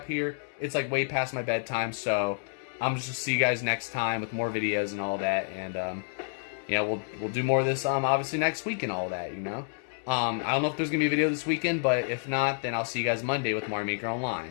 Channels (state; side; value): silent; right; 58 dB below the other